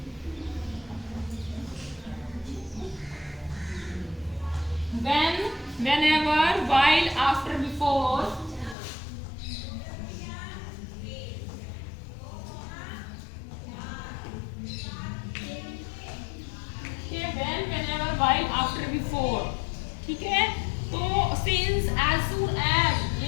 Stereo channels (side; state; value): right; drops out; at 8.8 s